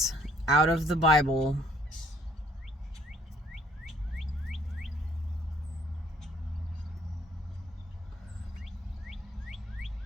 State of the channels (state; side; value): normal; both; correlation 0.60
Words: out of the Bible